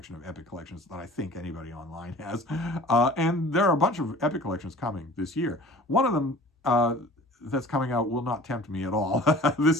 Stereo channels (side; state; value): both; normal; correlation 0.45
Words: of Epic collections that I think anybody online has. And there are a bunch of Epic collections coming this year. One of them that's coming out will not tempt me at all.